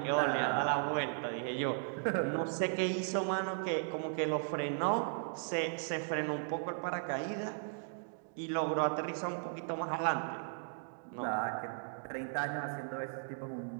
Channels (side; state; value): left; silent; digital silence